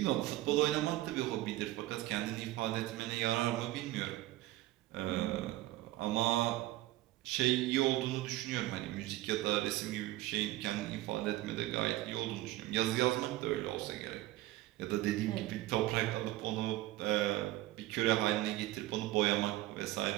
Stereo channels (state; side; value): quieter; left; 16.5 dB